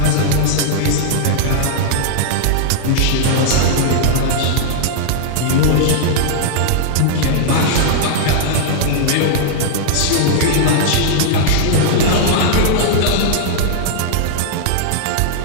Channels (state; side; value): different; both; correlation -0.01